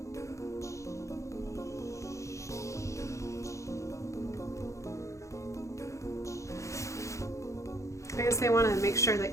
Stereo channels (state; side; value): late; right; 0.15 ms